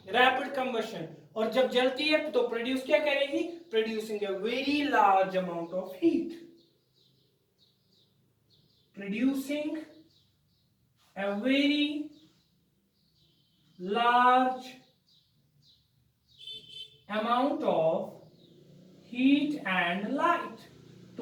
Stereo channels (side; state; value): both; identical; correlation 1.00